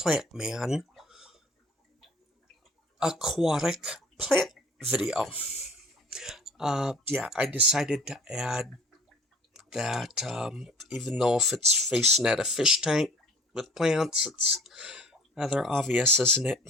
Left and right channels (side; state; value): both; normal; correlation 0.48